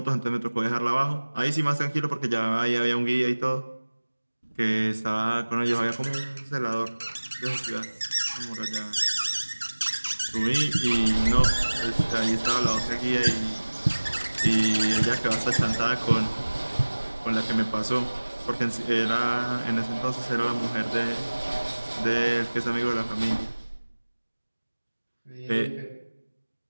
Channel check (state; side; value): inverted; both; correlation -1.00